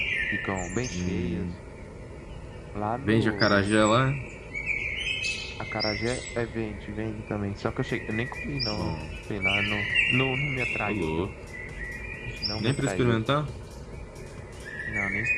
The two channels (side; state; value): both; identical; correlation 1.00